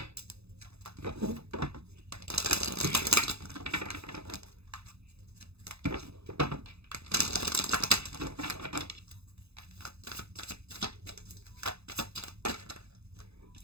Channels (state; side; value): late; left; 0.79 ms